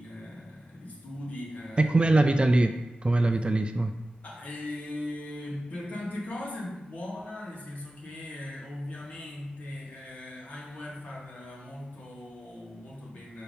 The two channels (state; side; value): normal; both; correlation 0.95